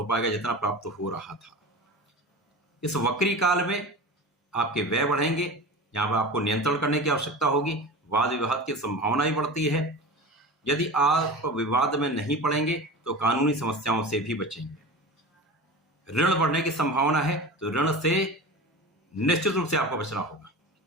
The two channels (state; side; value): normal; both; correlation 0.32